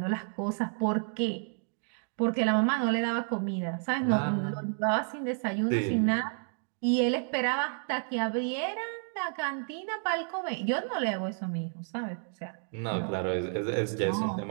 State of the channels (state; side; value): silent; left; 57 dB below the other